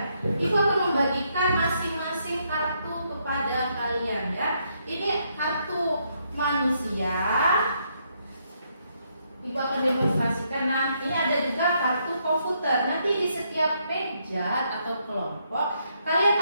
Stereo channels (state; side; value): inverted; both; correlation -0.75